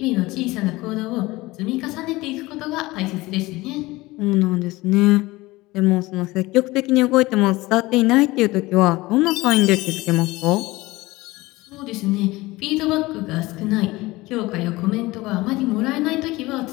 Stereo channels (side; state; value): right; quieter; 20.3 dB